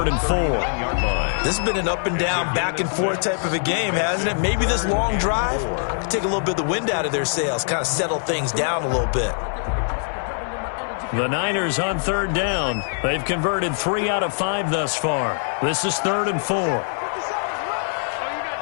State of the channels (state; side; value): silent; right; digital silence